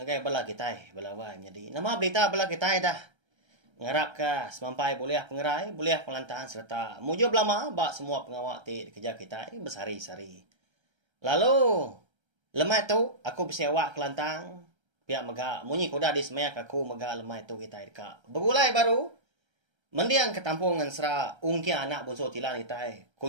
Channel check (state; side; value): late; left; 1.3 ms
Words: bala kita balawai jadi. Nama berita bala kita dah. Ngarap ka semampai boleh pengerai, boleh pelantahan serta mujub lama ba semua pengawak ti kerja kita bersari-sari. Lalu lemai tu aku bersewa kelantang. Pihak maga munyi kuda di semeyak aku maga lemai tu kita dekat. Begulai baru mendiang ketampung Ensera ungkia anak bonso tilan itai.